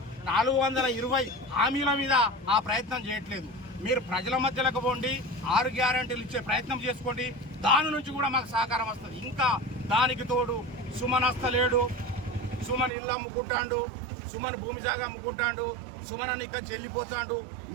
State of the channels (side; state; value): left; drops out; at 12.9 s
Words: 420 హామీల మీద ఆ ప్రయత్నం చేయట్లేదు. మీరు ప్రజల మధ్యలోకి పోండి, 6 గ్యారెంటీలు ఇచ్చే ప్రయత్నం చేసుకోండి, దాని నుంచి కూడా మాకు సహకారం వస్తుంది. ఇంకా దానికి తోడు సుమన్ వస్తలేడు, సుమన్ ఇల్లు అమ్ముకుంటాడు, సుమన్ భూమి జాగా అమ్ముకుంటాడు, సుమన్ అని ఇక్కడ చెల్లిపోతాడు,